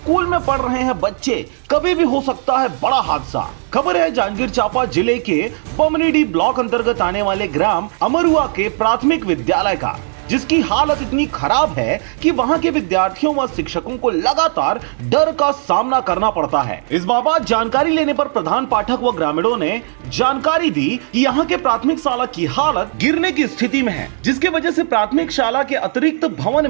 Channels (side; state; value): left; silent; digital silence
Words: में पढ़ रहे हैं बच्चे, कभी भी हो सकता है बड़ा हादसा। खबर है जांजगीर चांपा जिले के पमनीडी ब्लॉक अंतर्गत आने वाले ग्राम अमरुआ के प्राथमिक विद्यालय का, जिसकी हालत इतनी खराब है कि वहां के विद्यार्थियों व शिक्षकों को लगातार डर का सामना करना पड़ता है। इस बाबत जानकारी लेने पर प्रधान पाठक व ग्रामीणों ने जानकारी दी कि यहाँ के प्राथमिक शाला की हालत गिरने की स्थिति में है, जिसके वजह से प्राथमिक शाला के अतिरिक्त भवन